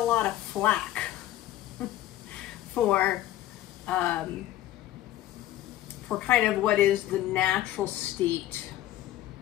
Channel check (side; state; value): right; quieter; 13.9 dB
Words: lot of flack for kind of what is the natural state